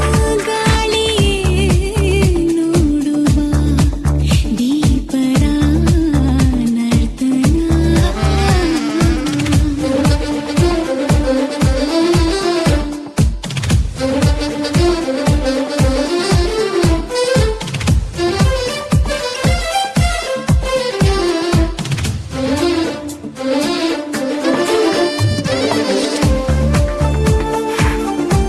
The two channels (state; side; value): identical; both; correlation 1.00